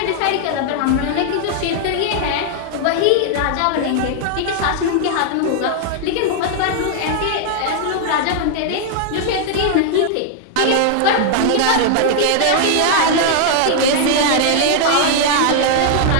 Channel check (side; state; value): both; different; correlation -0.01